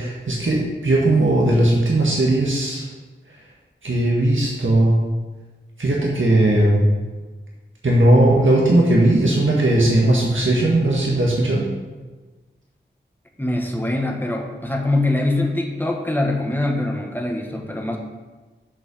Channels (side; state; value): both; normal; correlation 0.82